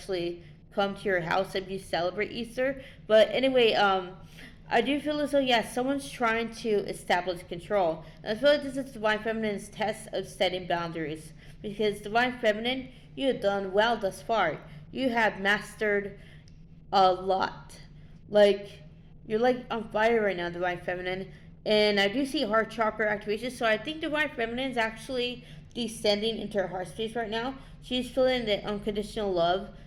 come to your house if you celebrate Easter. But anyway, I do feel as though, yes, someone's trying to establish control. And I feel like this is Divine Feminine's test of setting boundaries. Because Divine Feminine, you have done well thus far. You have mastered a lot. Like, you're like on fire right now, Divine Feminine. And I do see heart chakra activation. So I think Divine Feminine is actually descending into her heart space right now. She's feeling the unconditional love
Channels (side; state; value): both; identical; correlation 1.00